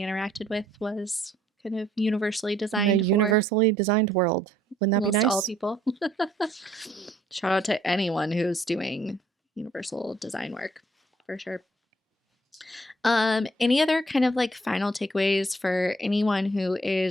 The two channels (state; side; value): normal; both; correlation 0.64